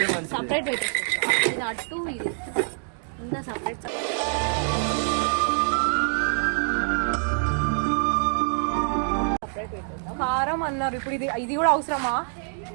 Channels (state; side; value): silent; left; 61 dB below the other